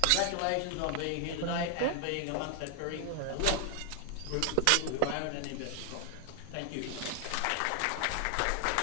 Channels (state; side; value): different; both; correlation 0.00